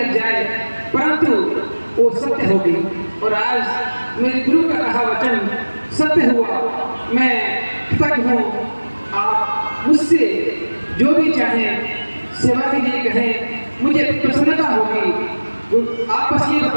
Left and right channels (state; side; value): inverted; both; correlation -1.00